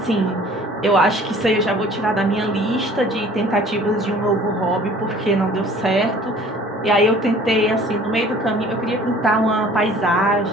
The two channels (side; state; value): both; normal; correlation 0.50